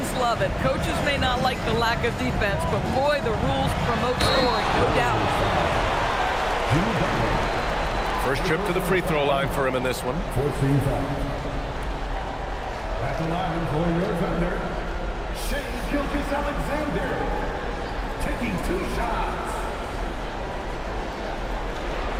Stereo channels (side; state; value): both; identical; correlation 1.00